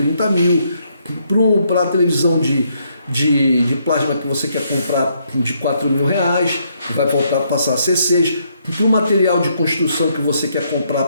mil, para a televisão de plasma que você quer comprar de 4 mil reais, que vai voltar a passar a ser 6, para o material de construção que você quer comprar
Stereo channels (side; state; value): both; inverted; correlation -0.73